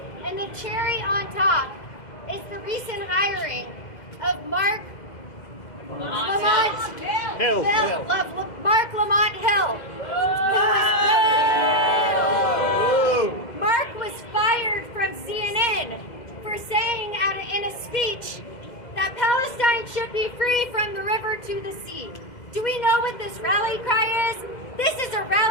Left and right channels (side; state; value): right; late; 2.0 ms